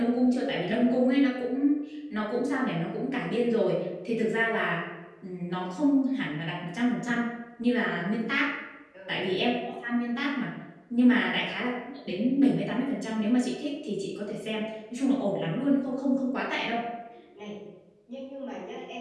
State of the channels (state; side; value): identical; both; correlation 1.00